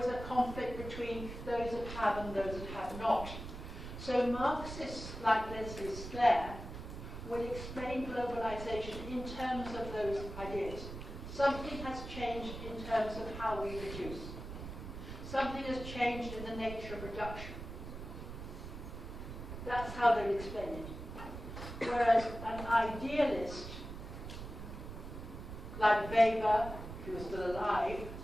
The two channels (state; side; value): noise; right; rumble, 9 dB below the sound